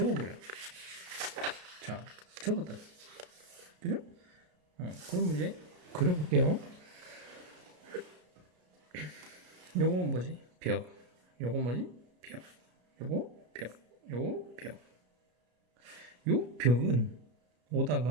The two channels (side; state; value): left; late; 33 ms